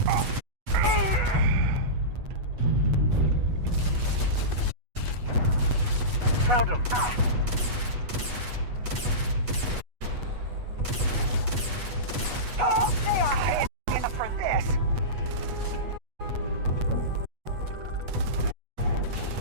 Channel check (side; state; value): left; late; 8.2 ms